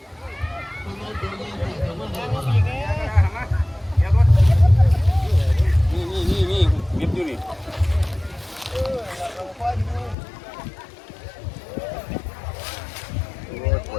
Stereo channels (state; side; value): drops out; right; at 10.2 s